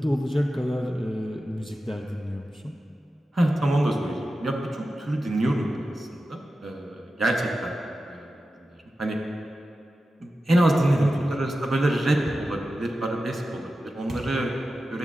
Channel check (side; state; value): both; normal; correlation 0.93